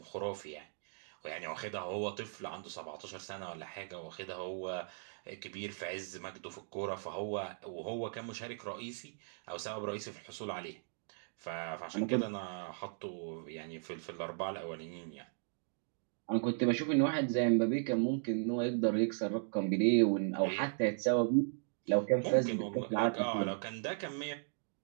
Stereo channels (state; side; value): silent; left; digital silence